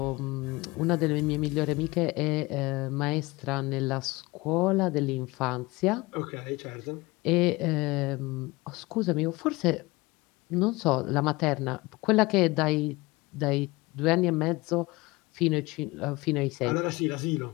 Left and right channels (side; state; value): right; quieter; 22.6 dB